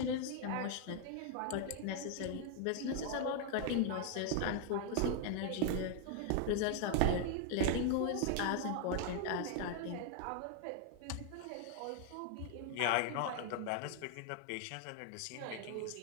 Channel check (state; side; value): different; both; correlation 0.00